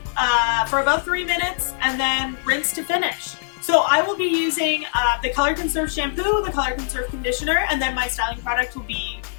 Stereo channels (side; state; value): right; silent; digital silence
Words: for about 3 minutes and then rinse to finish. So I will be using the Color Conserve shampoo, the Color Conserve conditioner, and then my styling product will be